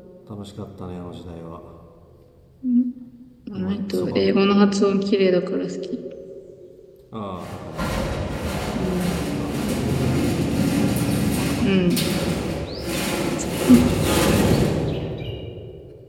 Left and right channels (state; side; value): identical; both; correlation 1.00